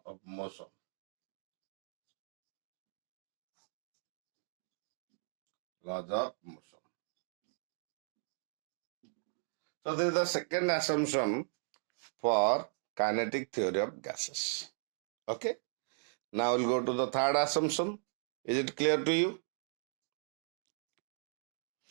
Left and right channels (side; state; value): left; silent; digital silence